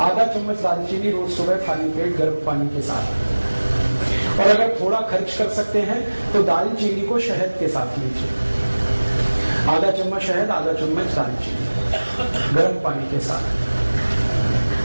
आधा चम्मच दालचीनी रोज सुबह खाली पेट गर्म पानी के साथ। और अगर थोड़ा खर्च कर सकते हैं तो दालचीनी को शहद के साथ लीजिए। आधा चम्मच शहद, आधा चम्मच दालचीनी गर्म पानी के साथ।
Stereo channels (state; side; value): inverted; both; correlation -1.00